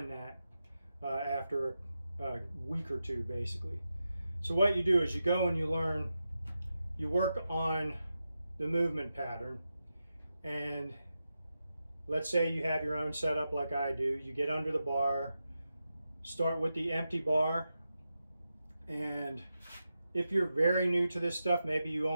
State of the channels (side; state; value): both; inverted; correlation -0.89